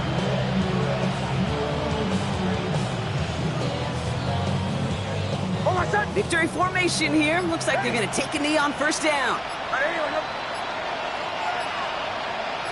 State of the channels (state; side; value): identical; both; correlation 1.00